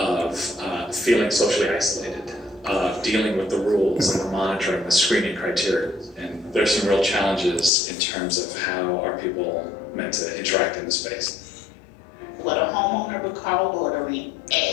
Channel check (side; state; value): right; drops out; at 7.7 s